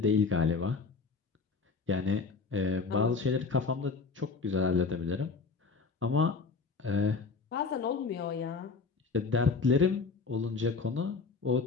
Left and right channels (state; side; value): quieter; right; 4.7 dB